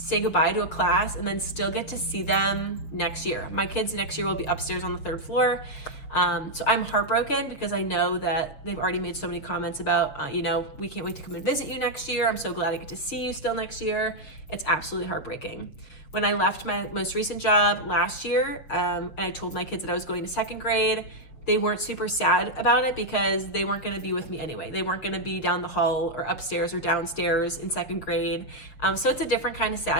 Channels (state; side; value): late; right; 6.7 ms